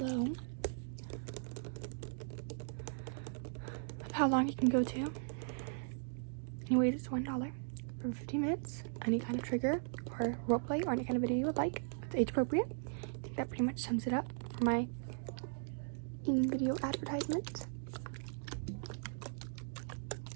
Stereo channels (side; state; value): left; silent; digital silence